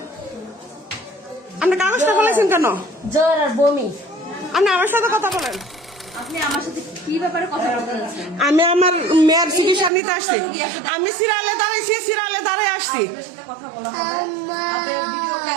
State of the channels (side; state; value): left; drops out; at 9.9 s